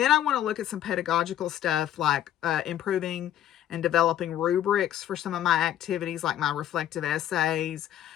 I want to look at some pedagogical stuff like improving and developing rubrics for some of my activities, like my reflective essays,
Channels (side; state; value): right; quieter; 11.5 dB